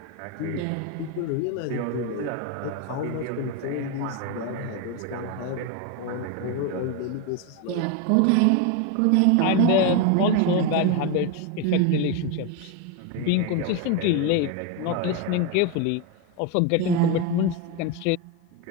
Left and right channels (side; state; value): both; different; correlation 0.02